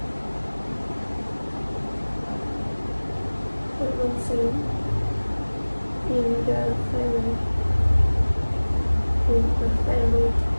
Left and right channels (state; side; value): inverted; both; correlation -1.00